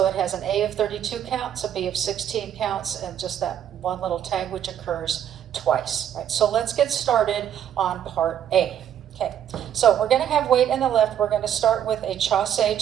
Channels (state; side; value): quieter; left; 9.9 dB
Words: it has an A of 32 counts, a B of 16 counts, and just that one little tag which occurs twice. Right, so let's get started on part A. Okay, so we're going to have weight in the left. We're going to start with a chassé